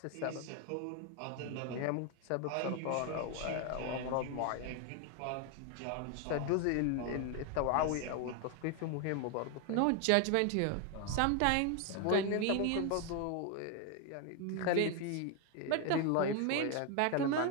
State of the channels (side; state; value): both; different; correlation 0.01